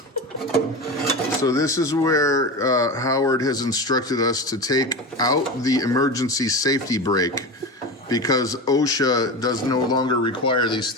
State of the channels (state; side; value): normal; both; correlation 0.25